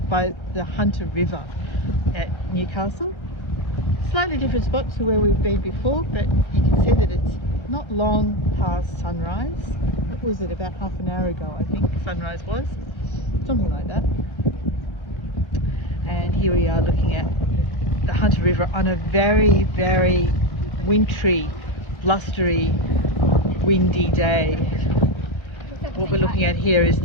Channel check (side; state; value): right; late; 1.4 ms